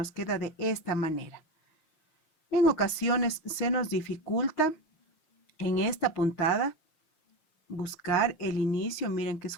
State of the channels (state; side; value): late; right; 6.4 ms